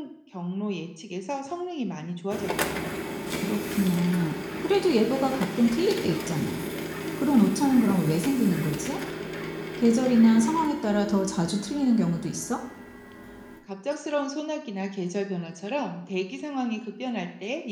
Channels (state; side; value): identical; both; correlation 1.00